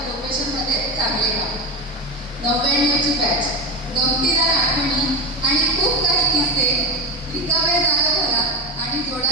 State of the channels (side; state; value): both; normal; correlation 0.17